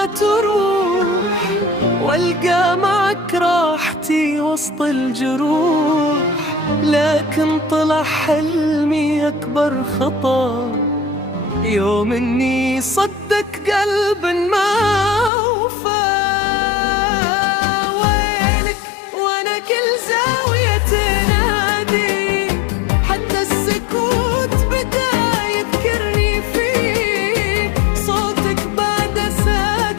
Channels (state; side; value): drops out; right; at 15.3 s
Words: تروح، والقى معك راحتي وسط الجروح، لكن طلع حلمي أكبر خطأ يوم إني صدق قلب ما وفى. وينك وأنا كل زاوية تنادي، حتى السكوت بدا يذكرني فيك. صوتك بعد